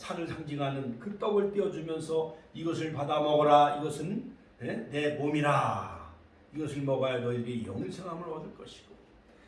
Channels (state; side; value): identical; both; correlation 1.00